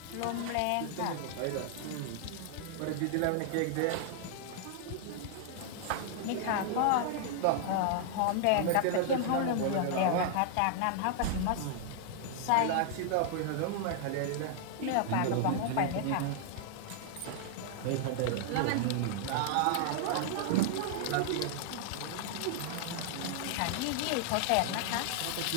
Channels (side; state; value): both; different; correlation -0.01